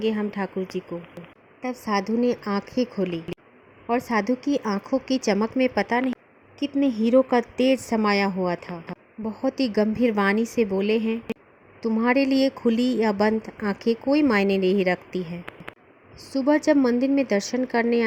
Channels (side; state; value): both; identical; correlation 1.00